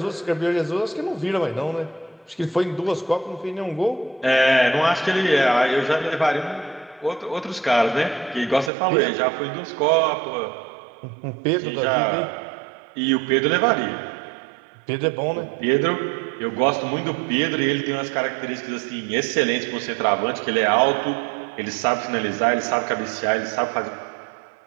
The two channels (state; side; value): drops out; left; at 8.7 s